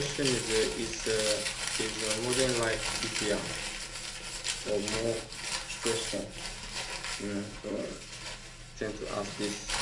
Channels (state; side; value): identical; both; correlation 1.00